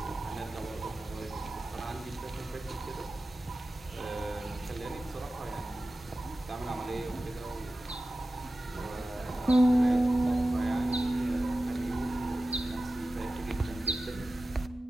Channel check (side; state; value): both; normal; correlation 0.95